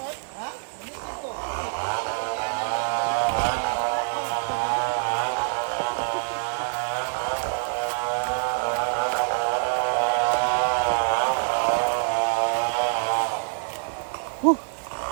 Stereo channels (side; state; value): left; silent; digital silence